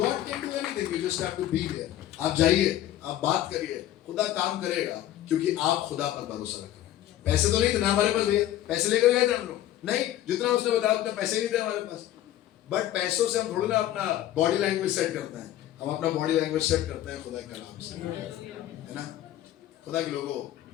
can do anything, you just have to be there. आप जाइए, आप बात करिए, खुदा काम करेगा, क्योंकि आप खुदा पर भरोसा रख रहे हैं। पैसे तो नहीं थे ना हमारे पास भैया, पैसे लेकर गए थे हम लोग नहीं, जितना उसने बताया उतना पैसे नहीं थे हमारे पास। बट पैसों से हम थोड़ी ना अपना बॉडी लैंग्वेज सेट करते हैं, हम अपना बॉडी लैंग्वेज सेट करते हैं खुदा के कलाम से, है ना। खुदा के लोगों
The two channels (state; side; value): quieter; right; 13.0 dB